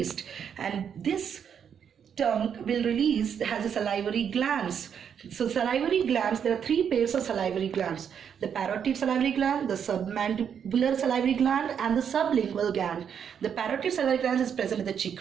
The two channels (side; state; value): left; quieter; 7.9 dB